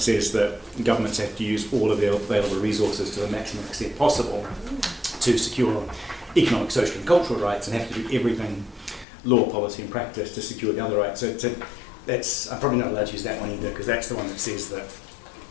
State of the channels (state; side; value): drops out; right; at 9.1 s